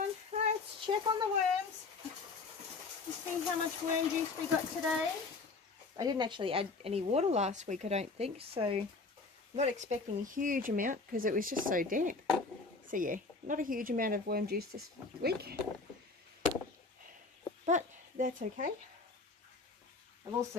Let's check on the worms. Let's see how much worm juice we got today. I didn't actually add any water last week, I don't think, so I'm not expecting a huge amount because it was just so damp. So yeah, not a huge amount of worm juice this week, but that's okay. I've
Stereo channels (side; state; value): right; quieter; 4.0 dB